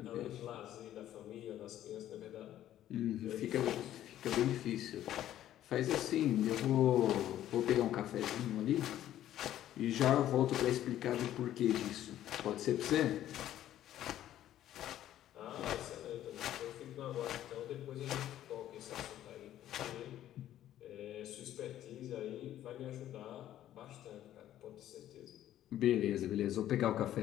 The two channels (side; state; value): right; quieter; 12.4 dB